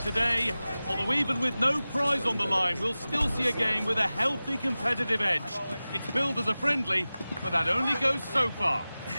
Although even with no prize on the line, we'll still see a game with a healthy competitive edge. It's billed as a friendly, but that only goes so far.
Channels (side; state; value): both; inverted; correlation -0.97